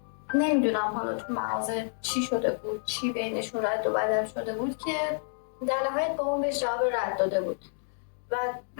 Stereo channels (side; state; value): right; silent; digital silence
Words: نمیدونم حالا تو مغازه چی شده بود، چی بینشون رد و بدل شده بود که در نهایت بابام بهش جواب رد داده بود و